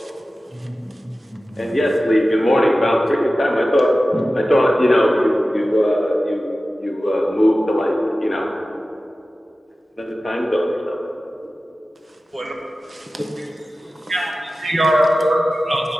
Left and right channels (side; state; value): both; normal; correlation 0.95